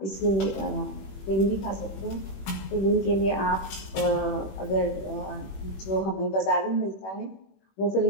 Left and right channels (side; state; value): right; late; 21 ms